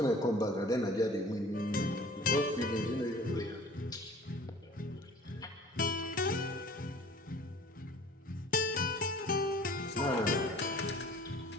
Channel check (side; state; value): both; normal; correlation 0.48